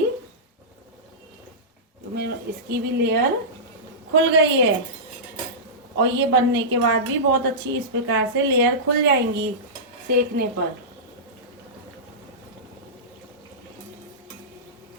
इसकी भी लेयर खुल गई है और ये बनने के बाद भी बहुत अच्छी इस प्रकार से लेयर खुल जाएंगी सेकने पर।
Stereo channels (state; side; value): normal; both; correlation -0.16